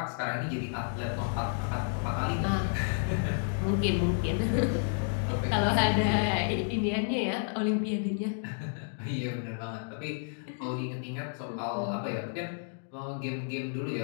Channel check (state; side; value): silent; right; digital silence